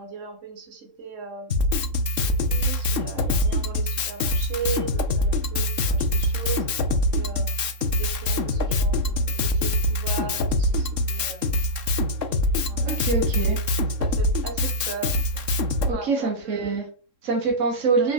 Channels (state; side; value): late; left; 3.7 ms